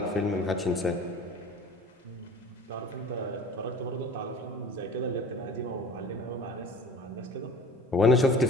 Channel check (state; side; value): normal; both; correlation 0.43